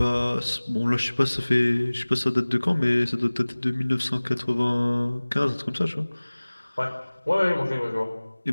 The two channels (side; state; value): both; inverted; correlation -1.00